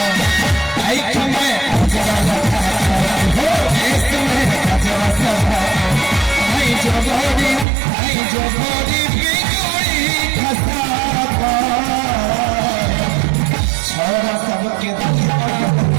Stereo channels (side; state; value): left; drops out; at 7.7 s